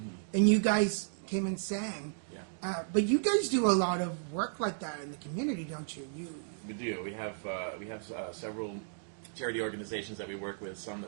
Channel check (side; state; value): left; silent; digital silence